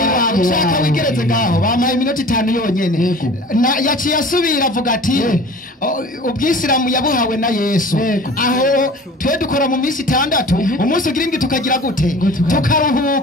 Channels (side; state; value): both; normal; correlation 0.43